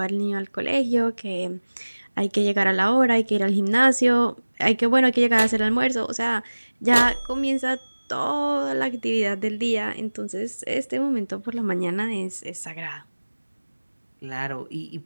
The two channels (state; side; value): inverted; both; correlation -1.00